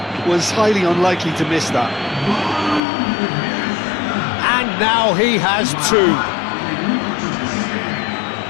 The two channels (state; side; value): drops out; right; at 2.8 s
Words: was highly unlikely to miss that. And now he has two.